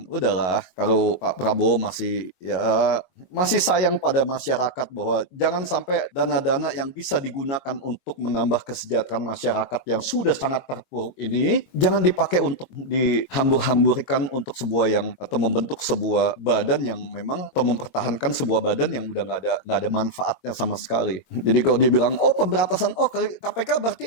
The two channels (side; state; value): right; late; 22 ms